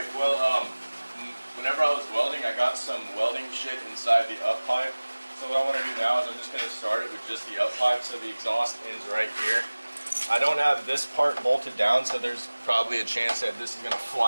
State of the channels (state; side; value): inverted; both; correlation -1.00